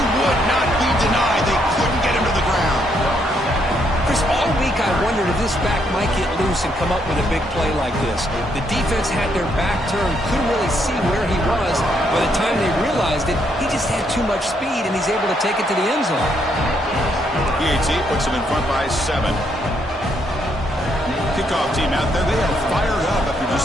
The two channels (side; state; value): both; normal; correlation 0.74